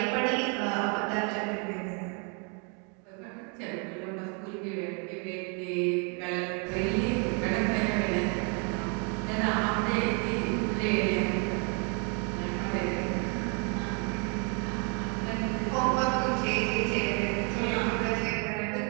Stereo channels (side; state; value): left; quieter; 36.1 dB